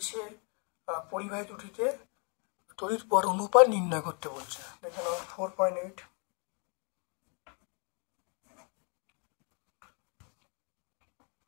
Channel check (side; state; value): right; quieter; 36.6 dB